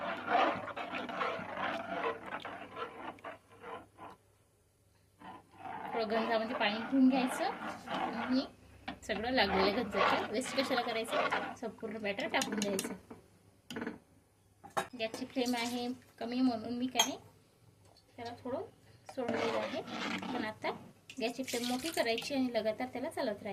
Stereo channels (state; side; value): identical; both; correlation 1.00